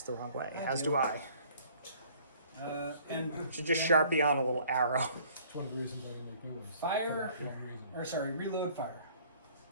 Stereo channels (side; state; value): both; inverted; correlation -0.56